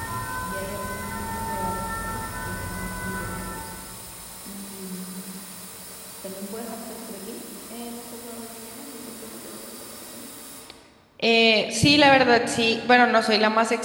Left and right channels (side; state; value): both; identical; correlation 1.00